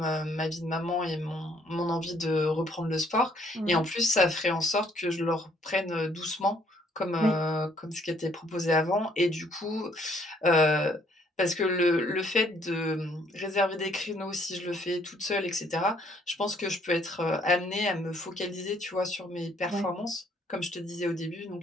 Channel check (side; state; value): both; normal; correlation 0.65